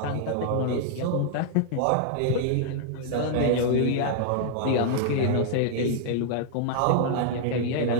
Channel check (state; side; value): different; both; correlation -0.01